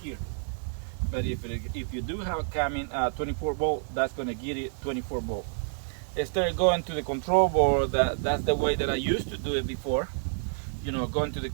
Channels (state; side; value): silent; left; digital silence